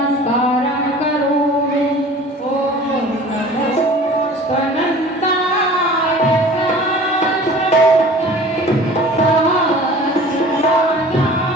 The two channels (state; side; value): normal; both; correlation 0.44